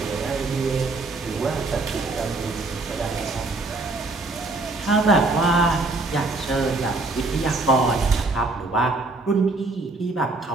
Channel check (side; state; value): left; quieter; 3.3 dB